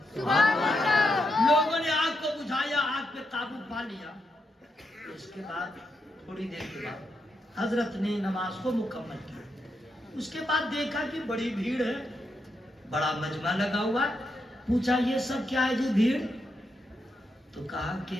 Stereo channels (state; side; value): normal; both; correlation 0.83